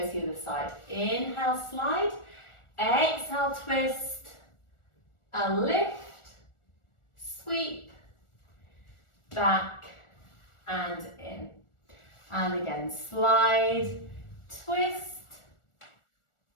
to the other side. Inhale, slide, exhale, twist, and lift, sweep, back, and in. And again, slide, twist,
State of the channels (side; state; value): right; late; 1.4 ms